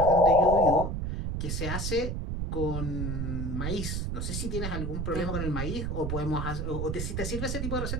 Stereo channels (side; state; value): right; noise; rumble, 2 dB below the sound